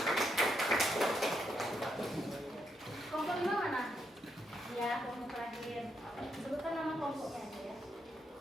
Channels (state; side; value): normal; both; correlation 0.79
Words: Kelompok 5 mana? Ya, kelompok terakhir. Sebutkan nama kelompoknya aja ya.